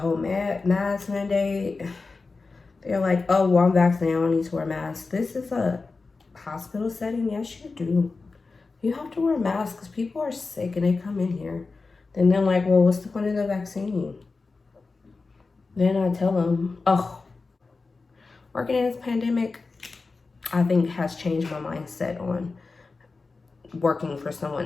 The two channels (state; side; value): quieter; right; 4.0 dB